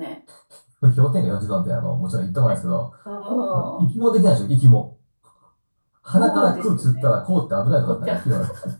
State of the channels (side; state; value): both; inverted; correlation -1.00